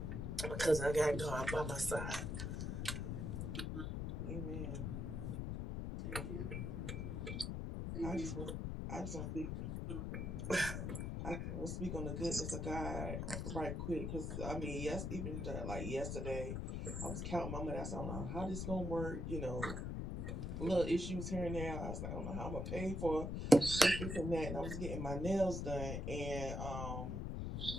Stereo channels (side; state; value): left; noise; rumble, 2 dB below the sound